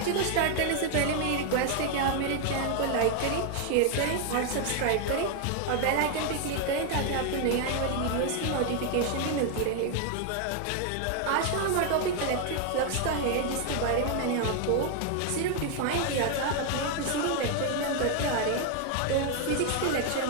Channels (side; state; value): both; different; correlation 0.01